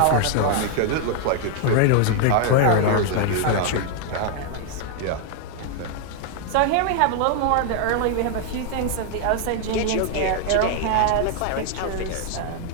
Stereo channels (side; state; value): both; different; correlation 0.00